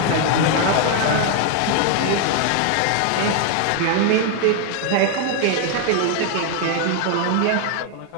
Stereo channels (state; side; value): different; both; correlation 0.00